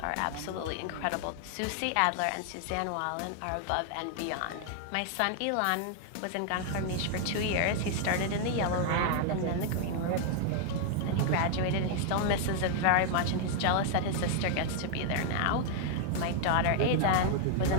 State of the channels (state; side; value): different; both; correlation 0.00